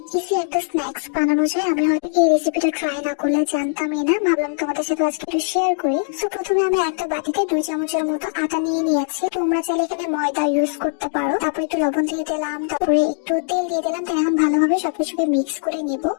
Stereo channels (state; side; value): silent; right; digital silence